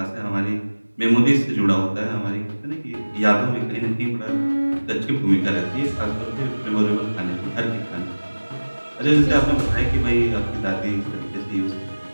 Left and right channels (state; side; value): inverted; both; correlation -1.00